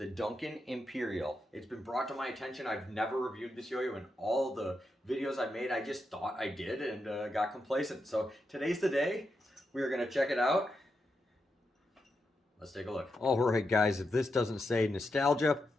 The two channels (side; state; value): both; normal; correlation 0.86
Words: Duncan Imperial. It's been brought to my attention. I've never reviewed this yo-yo in all the videos I made. I just thought I did and got complacent. So today's the day. We are going to check it out. Let's take a look. All right, guys, if this doesn't say nostalgia,